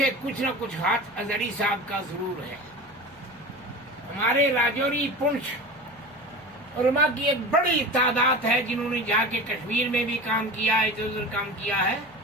کچھ نہ کچھ ہاتھ ازہری صاحب کا ضرور ہے۔ ہمارے راجوری پنچ علماء کی ایک بڑی تعداد ہے جنہوں نے جا کے کشمیر میں بھی کام کیا ہے، ادھر ادھر کام کیا ہے،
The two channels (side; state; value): right; noise; hum, 29 dB below the sound